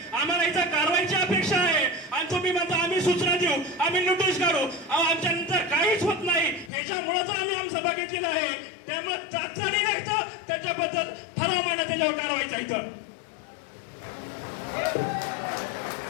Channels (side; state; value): right; drops out; at 6.7 s